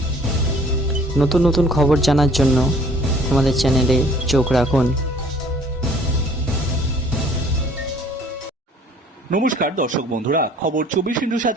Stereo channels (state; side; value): normal; both; correlation 0.55